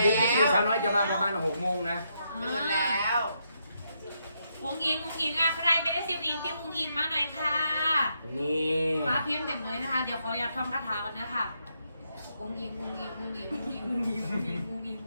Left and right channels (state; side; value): inverted; both; correlation -0.79